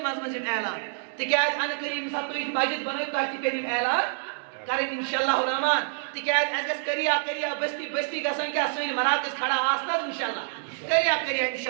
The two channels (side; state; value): left; silent; digital silence